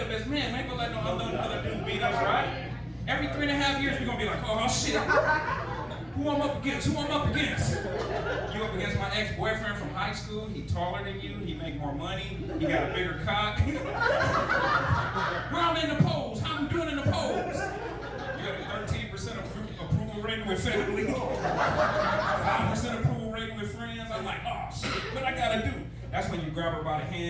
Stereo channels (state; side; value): identical; both; correlation 1.00